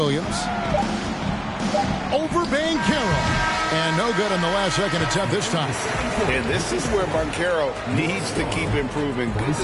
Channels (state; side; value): identical; both; correlation 1.00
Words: Over Banchero. And no good on the last second attempt this time. And this is where Banchero needs to keep improving. Good